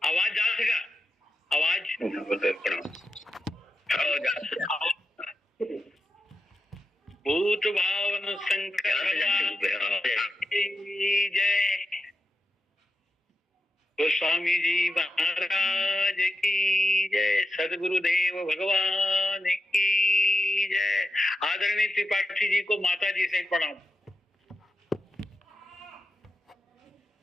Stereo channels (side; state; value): both; normal; correlation 0.88